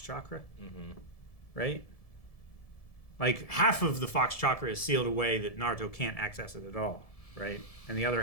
Chakra. Mm-hmm. Right? Like, half of the Fox Chakra is sealed away that Naruto can't access it at all, right? And the other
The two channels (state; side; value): late; right; 1.7 ms